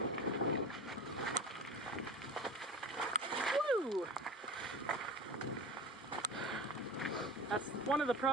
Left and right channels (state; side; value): normal; both; correlation 0.32